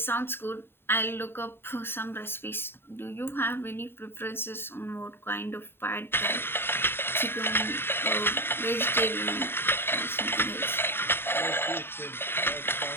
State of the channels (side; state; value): right; late; 0.11 ms